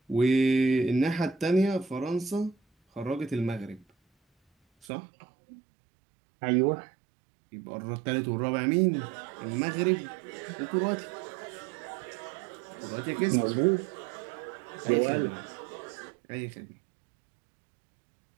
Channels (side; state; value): left; drops out; at 4.9 s